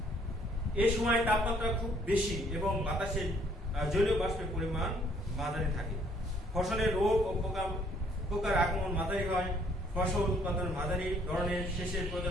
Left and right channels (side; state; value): both; normal; correlation 0.64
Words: এই সময় তাপমাত্রা খুব বেশি এবং বাতাসে জলীয় বাষ্পের পরিমাণ মাঝারি থাকে। ফসলের রোগ ও পোকার আক্রমণ মাঝারি হয়। ফসল উৎপাদন মাঝারি ধরনের সেচের